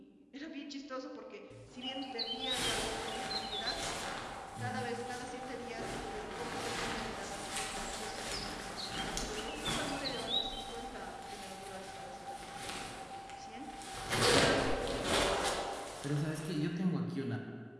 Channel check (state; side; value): identical; both; correlation 1.00